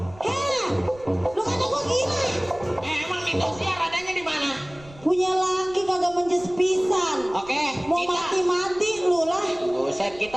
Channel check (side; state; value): right; noise; rumble, 22 dB below the sound